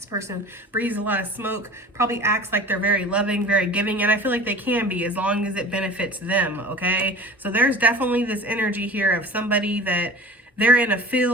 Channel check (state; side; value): normal; both; correlation 0.39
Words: person breathes a lot of smoke, probably acts like they're very loving, very giving, and I feel like they can be as long as it benefits them, okay? So there's definitely this energy here of somebody that they're in a